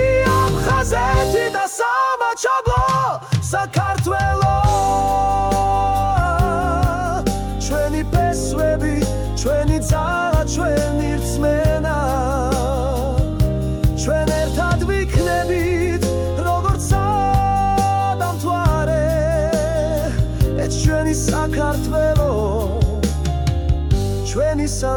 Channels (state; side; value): identical; both; correlation 1.00